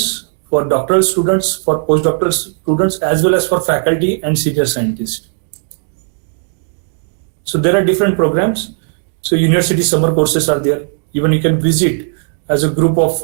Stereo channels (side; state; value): left; silent; 70 dB below the other